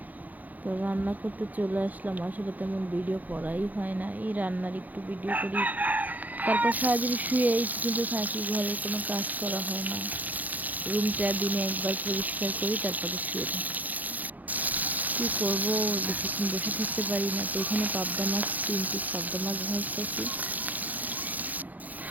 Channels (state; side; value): late; left; 0.081 ms